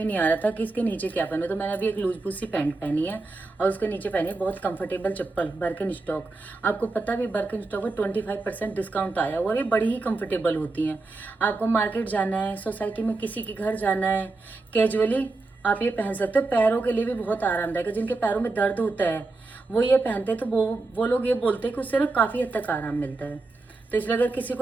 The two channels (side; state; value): left; quieter; 3.4 dB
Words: नहीं आ रहा था कि इसके नीचे क्या पहनूं। तो मैंने अभी एक लूज बूज सी पैंट पहनी है और उसके नीचे पहनी है बहुत कंफर्टेबल चप्पल बर्कन स्टॉक। आपको पता भी बर्कन स्टॉक में 25% डिस्काउंट आया हुआ है। ये बड़ी ही कंफर्टेबल होती हैं। आपको मार्केट जाना है, सोसाइटी में किसी के घर जाना है, कैजुअली आप ये पहन सकते हो। पैरों के लिए भी बहुत आरामदायक है। जिनके पैरों में दर्द होता है वो ये पहनते हैं, तो वो लोग ये बोलते हैं कि उससे ना काफ़ी हद तक आराम मिलता है। तो इसलिए अगर किसी